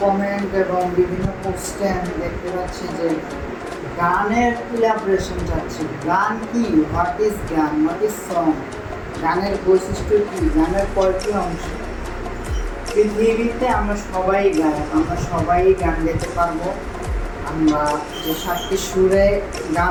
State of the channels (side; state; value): both; identical; correlation 1.00